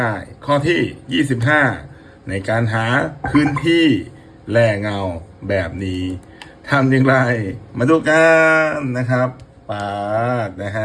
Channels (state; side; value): identical; both; correlation 1.00